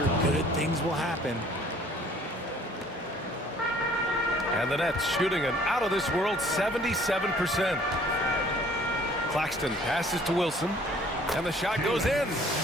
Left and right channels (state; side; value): normal; both; correlation 0.56